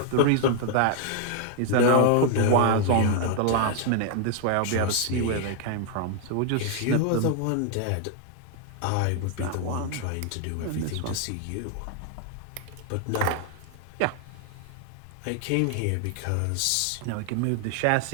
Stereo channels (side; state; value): both; different; correlation 0.00